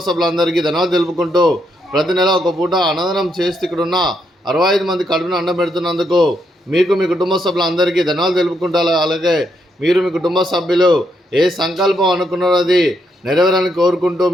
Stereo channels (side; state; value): both; normal; correlation 0.77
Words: సభ్యులందరికీ ధన్యవాదాలు తెలుపుకుంటూ ప్రతి నెల ఒక పూట అన్నదానం చేస్తూ ఇక్కడ ఉన్న 65 మంది కడుపును అన్నం పెడుతున్నందుకు మీకు మీ కుటుంబ సభ్యులందరికీ ధన్యవాదాలు తెలుపుకుంటారు. అలాగే మీరు మీ కుటుంబ సభ్యులు ఏ సంకల్పం అనుకున్నారో అది నెరవేరాలని కోరుకుంటూ